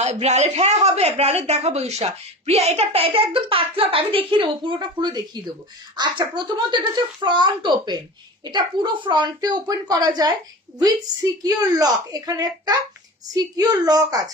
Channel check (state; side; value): normal; both; correlation 0.33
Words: ব্রালেট, হ্যাঁ হবে, ব্রালেট দেখাবো ঈশা। প্রিয়া, এটা একদম পাতলা, আমি দেখিয়ে দেবো, পুরোটা খুলে দেখিয়ে দেবো। আচ্ছা, প্রথমত এটা হচ্ছে ফ্রন্ট ওপেন, এটা পুরো ফ্রন্টে ওপেন করা যায় উইথ সিকিউর লক। এখানে একটা সিকিউর লক